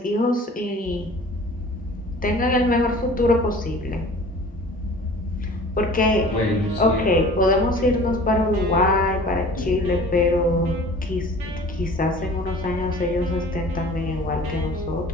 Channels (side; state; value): both; normal; correlation 0.45